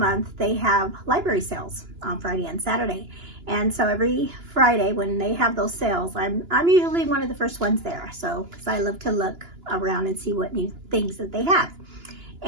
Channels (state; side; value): late; left; 2.9 ms